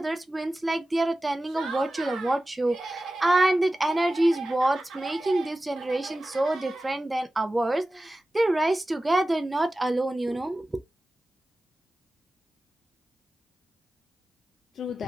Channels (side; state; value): both; normal; correlation 0.95